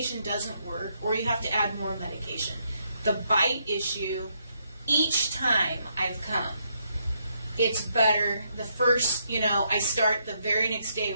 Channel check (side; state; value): both; inverted; correlation -0.76